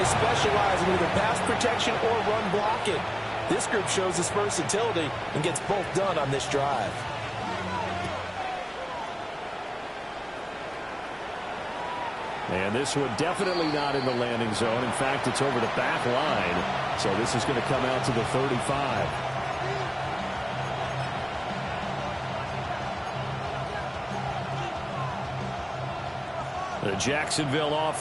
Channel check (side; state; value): both; identical; correlation 1.00